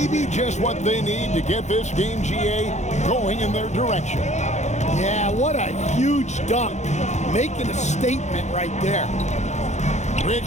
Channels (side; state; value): right; late; 0.33 ms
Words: just what they need to get this game, GA, going in their direction. Yeah, what a huge dunk. Making a statement right there.